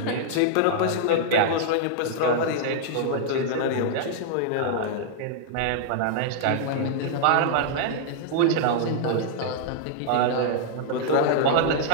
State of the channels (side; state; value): both; different; correlation -0.01